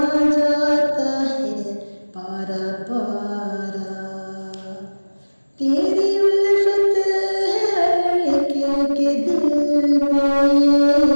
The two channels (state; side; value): inverted; both; correlation -1.00